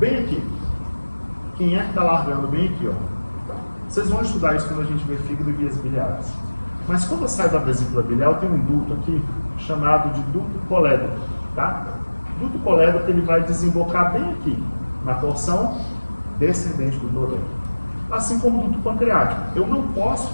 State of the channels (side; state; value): both; inverted; correlation -1.00